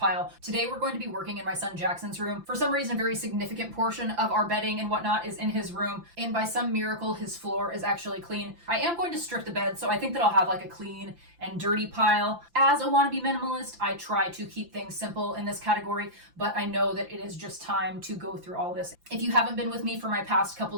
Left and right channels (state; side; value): late; left; 5.9 ms